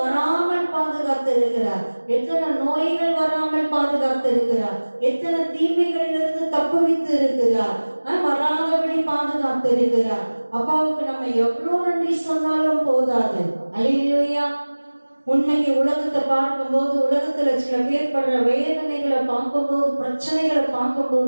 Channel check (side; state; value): both; inverted; correlation -1.00